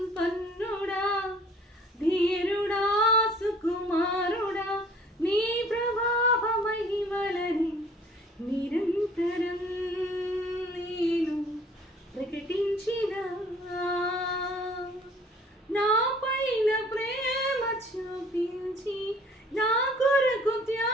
ధీరుడా సుకుమారుడా, నీ ప్రభావ మహిమలని నిరంతరం నేను ప్రకటించినా. నా పైన ప్రేమ చూపించి నా కొరకు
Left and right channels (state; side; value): normal; both; correlation 0.54